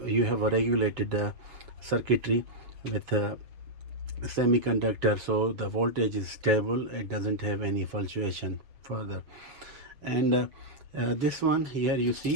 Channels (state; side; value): late; left; 7.1 ms